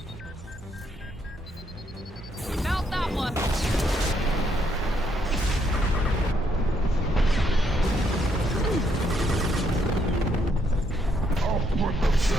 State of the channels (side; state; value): both; normal; correlation 0.73